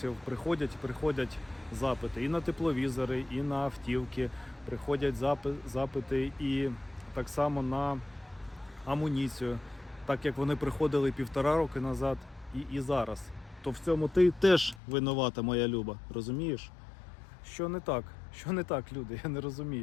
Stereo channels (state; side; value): drops out; right; at 14.8 s